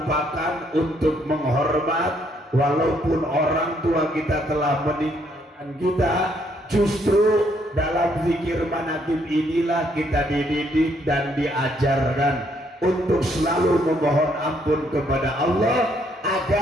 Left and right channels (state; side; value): normal; both; correlation 0.70